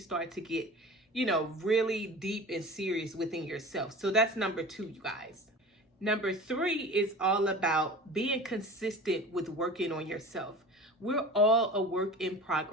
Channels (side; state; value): both; normal; correlation 0.37